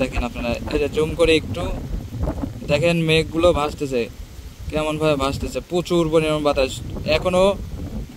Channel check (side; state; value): both; identical; correlation 1.00